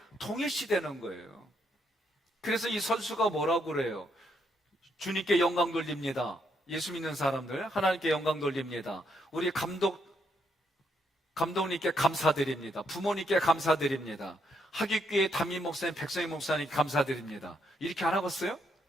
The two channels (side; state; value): both; normal; correlation 0.76